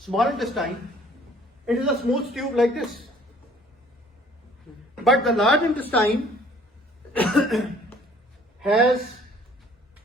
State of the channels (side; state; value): both; normal; correlation 0.56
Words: intestine, it is a smooth tube like this. But the large intestine has